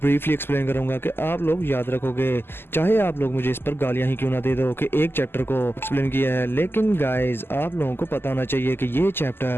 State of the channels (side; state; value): right; late; 0.11 ms